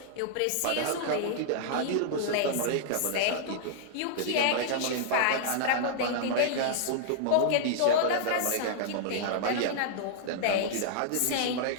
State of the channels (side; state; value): both; different; correlation -0.01